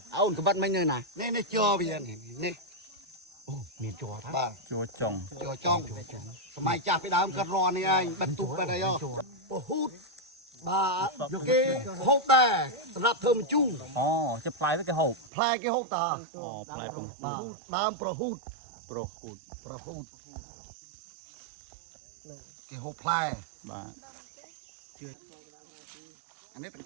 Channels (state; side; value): drops out; left; at 15.3 s